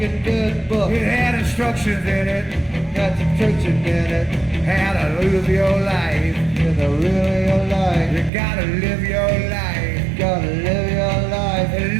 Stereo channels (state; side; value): drops out; left; at 8.3 s